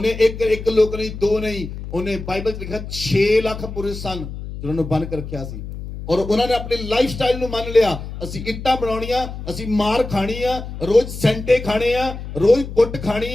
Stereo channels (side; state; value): left; noise; hum, 9 dB below the sound